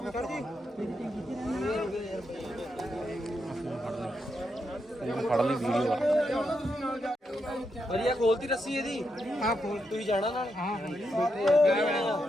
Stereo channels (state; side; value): normal; both; correlation 0.83